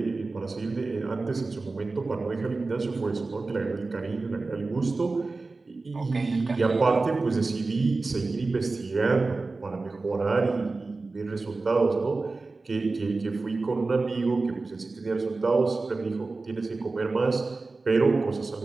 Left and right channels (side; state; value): left; quieter; 3.7 dB